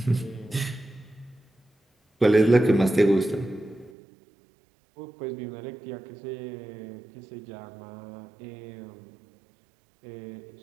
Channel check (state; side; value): drops out; left; at 3.9 s